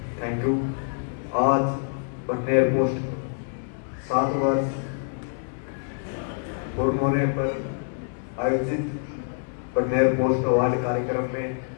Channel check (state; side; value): silent; right; digital silence